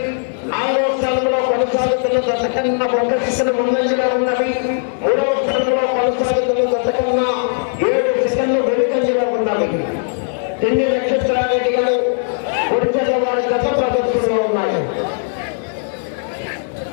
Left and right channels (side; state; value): right; silent; digital silence